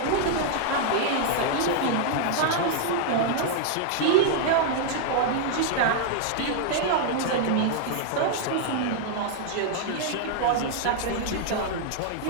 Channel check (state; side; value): different; both; correlation -0.01